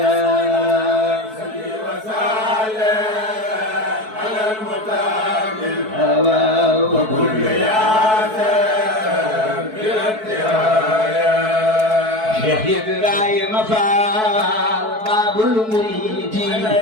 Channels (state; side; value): late; left; 4.6 ms